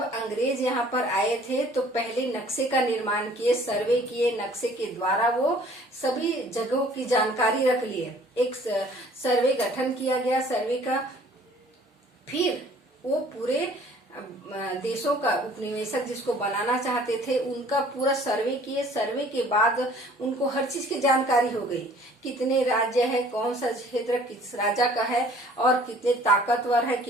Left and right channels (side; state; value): both; normal; correlation 0.54